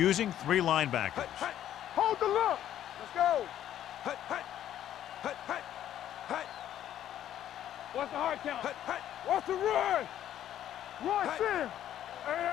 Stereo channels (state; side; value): quieter; right; 11.4 dB